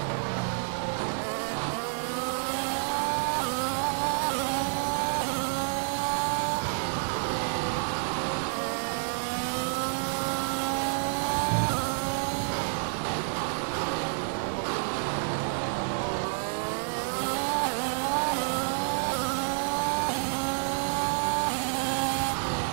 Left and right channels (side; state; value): left; silent; digital silence